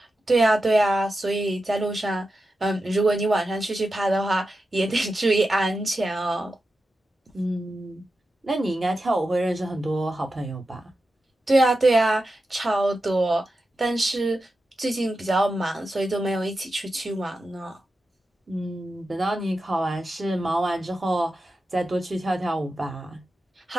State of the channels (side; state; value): both; normal; correlation 0.91